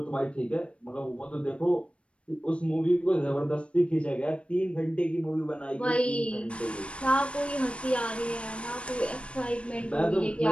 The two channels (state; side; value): late; right; 0.059 ms